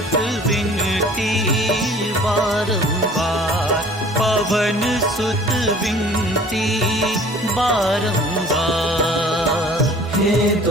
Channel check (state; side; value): normal; both; correlation 0.49